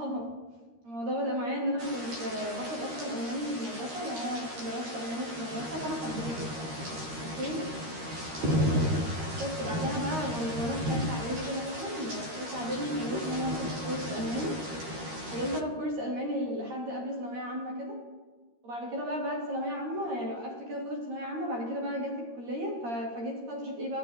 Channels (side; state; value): left; late; 13 ms